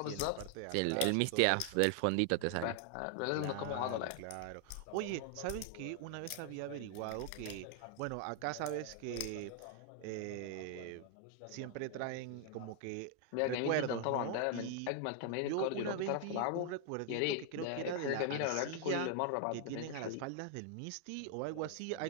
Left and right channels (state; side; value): different; both; correlation 0.00